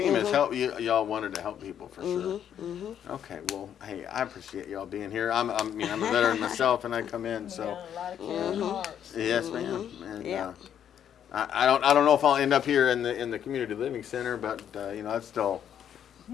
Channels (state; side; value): quieter; right; 9.4 dB